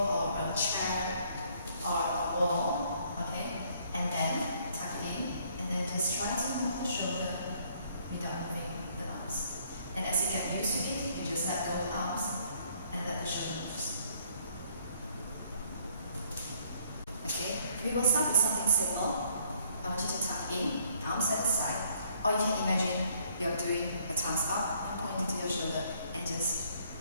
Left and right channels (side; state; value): both; inverted; correlation -0.65